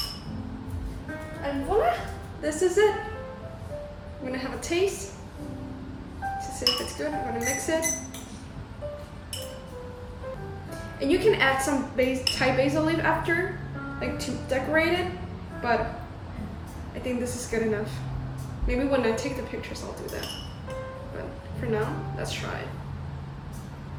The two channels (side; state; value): both; identical; correlation 1.00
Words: And voila, this is it. I'm gonna have a taste to see if it's good. I'm gonna mix it. And you can add some Thai basil leaf after, like to decorate it, but I think this is good enough. Maybe when I take the pictures I'll do that. But for now, let's try it.